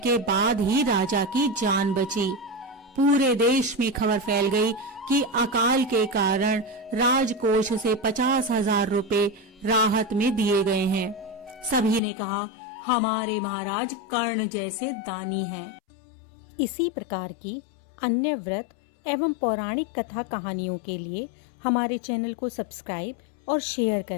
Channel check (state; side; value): drops out; right; at 12.0 s